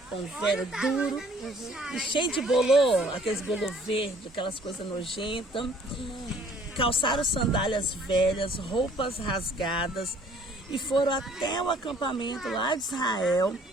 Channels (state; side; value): normal; both; correlation 0.58